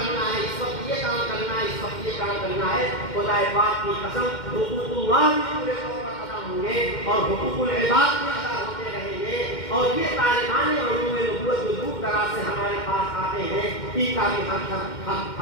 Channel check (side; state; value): right; late; 2.1 ms